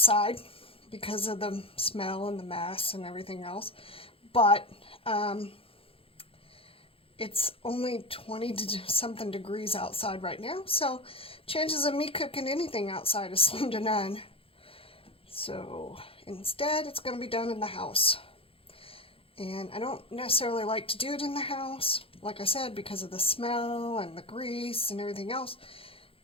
because of the smell and the mess and everything else, but it's only 20 to something degrees outside right now, so chances of me cooking anything outside is slim to none. So instead it's going to be done in the house, and I don't necessarily like to do it in the house, like I said, because of the smell and the grease and everything else,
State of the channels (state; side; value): late; right; 0.27 ms